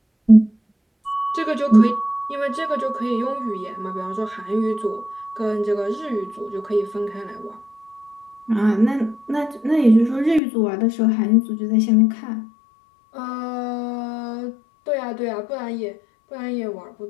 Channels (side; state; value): right; drops out; at 10.4 s